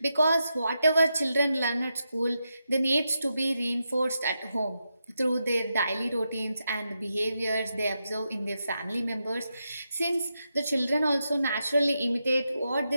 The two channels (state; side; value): inverted; both; correlation -0.86